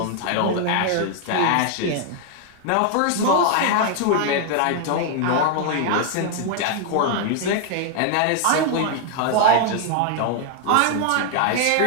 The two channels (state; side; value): different; both; correlation 0.00